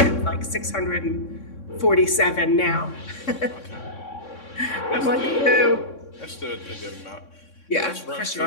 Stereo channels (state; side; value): late; right; 3.6 ms